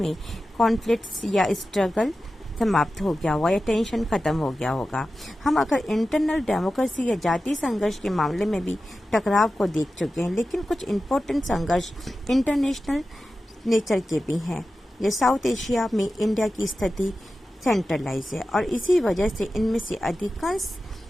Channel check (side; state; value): both; normal; correlation 0.93